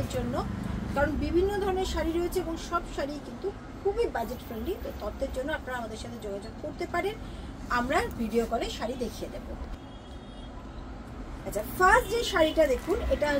জন্য। কারণ বিভিন্ন ধরনের শাড়ি রয়েছে এবং সব শাড়ি কিন্তু খুবই বাজেট ফ্রেন্ডলি। তো তত্ত্বের জন্য আপনারা আমাদের সাথে যোগাযোগ করতে পারেন, আমরা ভিডিও কলে শাড়ি দেখিয়ে দেবো। আচ্ছা, ফার্স্ট যে শাড়িটা দেখুন, এটা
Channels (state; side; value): identical; both; correlation 1.00